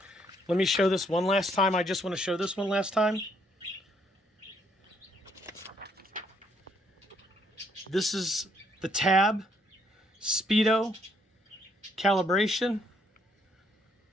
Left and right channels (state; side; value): normal; both; correlation 0.70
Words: Let me show this one last time. I just want to show this one last time. This is the tab, speedo, calibration